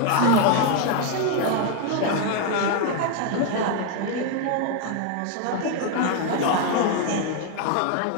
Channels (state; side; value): different; both; correlation 0.00